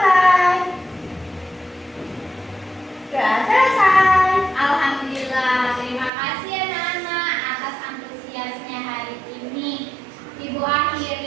Doa selesai. Alhamdulillah, terima kasih anak-anak atas antusiasnya hari ini. Ibu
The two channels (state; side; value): drops out; left; at 6.1 s